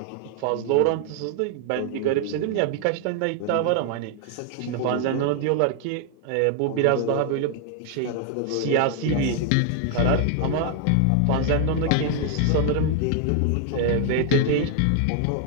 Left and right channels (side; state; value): both; different; correlation 0.00